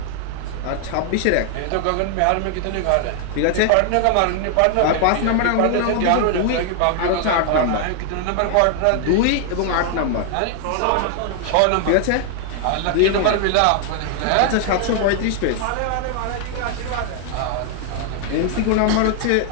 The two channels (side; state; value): both; different; correlation 0.00